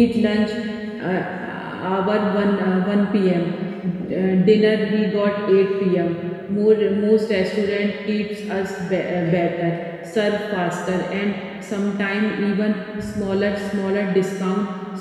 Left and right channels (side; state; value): both; identical; correlation 1.00